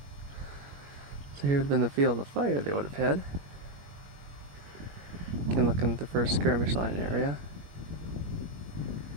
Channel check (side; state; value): left; late; 21 ms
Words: So here would have been the field of fire they would have had. Again, looking at the first skirmish line area.